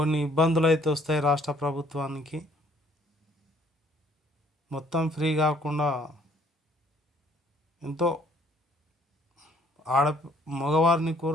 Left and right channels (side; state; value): both; normal; correlation 0.61